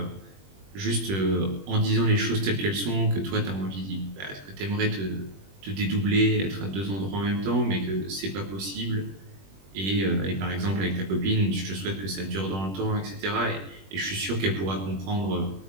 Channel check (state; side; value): late; left; 21 ms